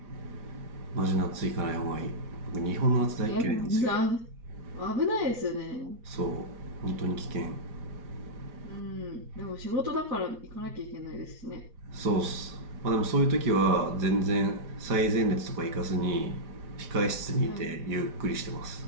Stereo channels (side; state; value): left; late; 5.0 ms